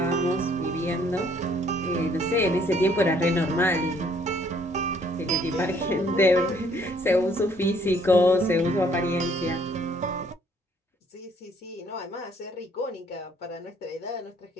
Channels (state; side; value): normal; both; correlation 0.63